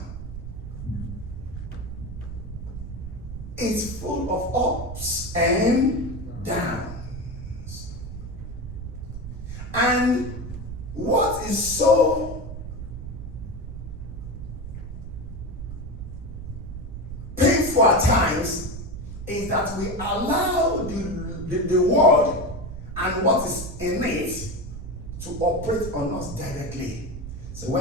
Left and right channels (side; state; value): right; noise; rumble, 9 dB below the sound